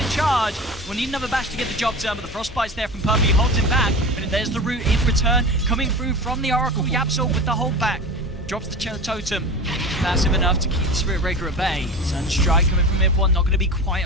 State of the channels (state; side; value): normal; both; correlation 0.30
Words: charge. We'll need another bash to get the job done, but the Frostbite's there from Puppy. Holds him back. But there's the root in return. Coming through from the Oracle. Yapso with the hold back. Drops the totem. Massive enough to keep the Spirit Breaker at bay. Sunstrike coming from mid one. Not going to be quite